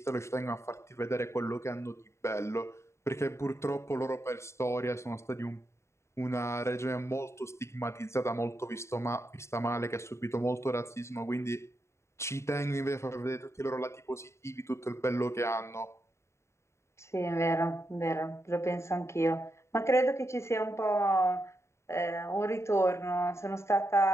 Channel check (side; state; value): right; late; 0.13 ms